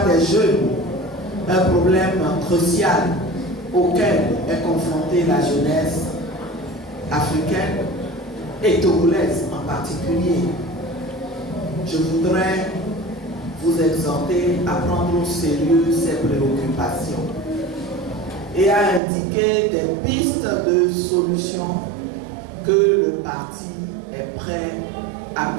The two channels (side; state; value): left; drops out; at 19.0 s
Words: des jeunes, un problème crucial auquel est confrontée la jeunesse africaine et togolaise en particulier? Je voudrais vous exhorter à prendre au sérieux ces préoccupations et à indiquer des pistes de solutions que le parti est prêt à